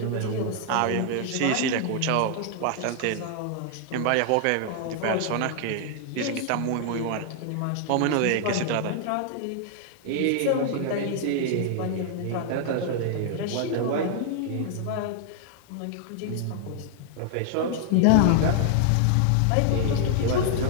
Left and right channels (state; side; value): different; both; correlation 0.00